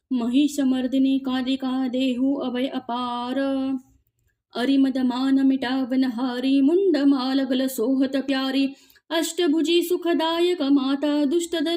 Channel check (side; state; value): both; identical; correlation 1.00